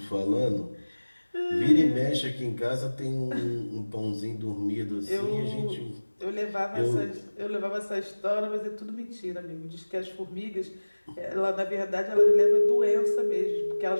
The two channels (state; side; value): inverted; both; correlation -1.00